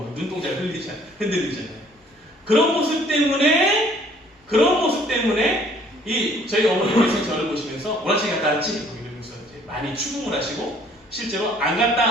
눈동자가 흔들리잖아요. 그런 모습 때문에 저희 어머니께서 저를 보시면서 오락실 갔다 왔지? 이러면서 이제 많이 추궁을 하시고 실제로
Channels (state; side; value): normal; both; correlation 0.59